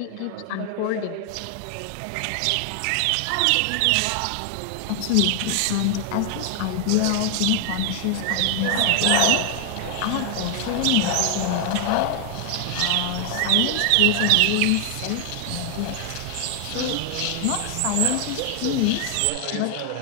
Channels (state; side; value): different; both; correlation 0.00